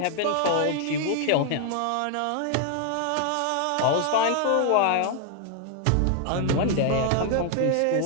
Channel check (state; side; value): different; both; correlation 0.00